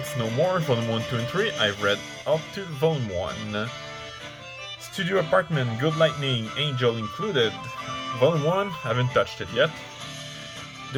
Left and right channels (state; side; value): identical; both; correlation 1.00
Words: No More, Volume 1, 2 and 3. I've read up to Volume 1. Studio Apartment, Good Lightning, Angel Included, Volume 1, haven't touched it yet.